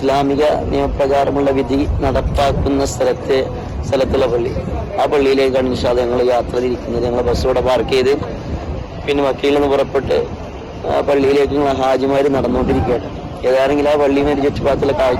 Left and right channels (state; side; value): identical; both; correlation 1.00